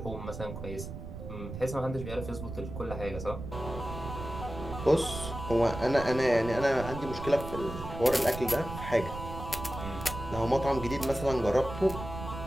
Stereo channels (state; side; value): noise; right; rumble, 9 dB below the sound